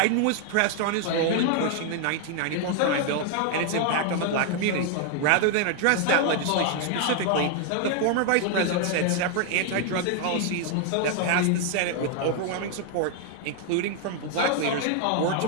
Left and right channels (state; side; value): different; both; correlation 0.00